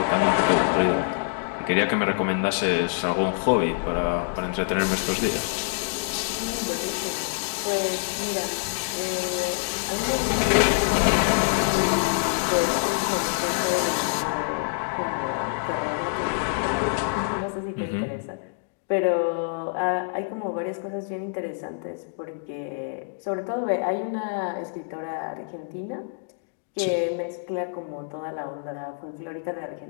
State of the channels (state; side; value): silent; right; digital silence